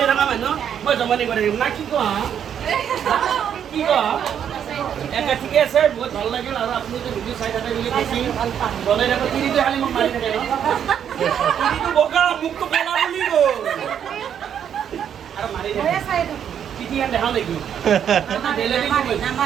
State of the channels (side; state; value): left; quieter; 8.8 dB